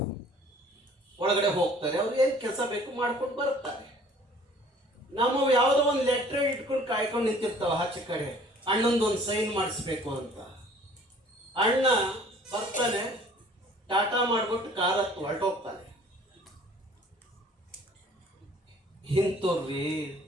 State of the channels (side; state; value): both; normal; correlation 0.53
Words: ಒಳಗಡೆ ಹೋಗ್ತಾರೆ, ಅವ್ರು ಏನು ಕೆಲಸ ಬೇಕು ಮಾಡ್ಕೊಂಡು ಬರ್ತಾರೆ. ನಮ್ಮ ಯಾವುದೋ ಒಂದು ಲೆಟ್ರ್ ಇಟ್ಕೊಂಡು ಕಾಯ್ಕೊಂಡು ನಿಂತಿರ್ತಾವ ಆಚೆ ಕಡೆ, ಅಣ್ಣಂದೊಂದು ಸೈನ್ ಮಾಡಿಸ್ಬೇಕು ಅಂತ. ಅಣ್ಣ ಬರ್ತಾನೆ, ಟಾಟಾ ಮಾಡ್ಬಿಟ್ಟು ಕಾರ್ ಹತ್ತು ಹೊರಟೋಗ್ತಾನೆ. ಇಂಥವ್ರಿ